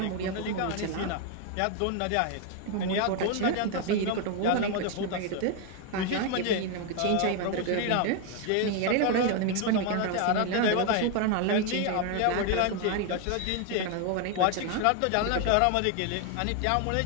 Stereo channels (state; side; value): different; both; correlation 0.01